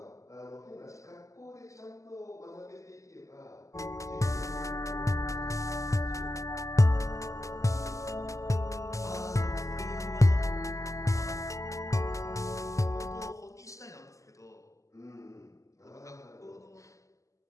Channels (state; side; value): late; right; 0.16 ms